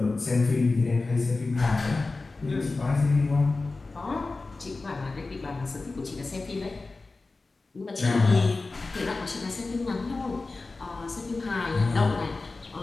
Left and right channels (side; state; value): right; quieter; 3.6 dB